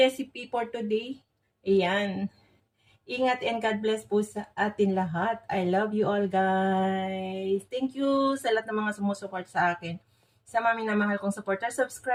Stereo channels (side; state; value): both; identical; correlation 1.00